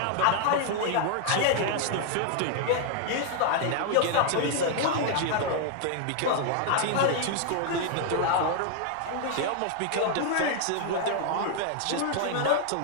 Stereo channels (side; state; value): both; different; correlation 0.00